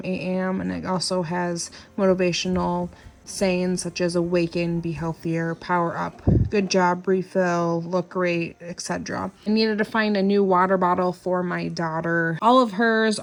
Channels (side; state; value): both; identical; correlation 1.00